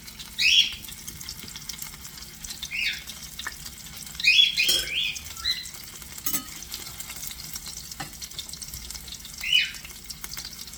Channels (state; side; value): identical; both; correlation 1.00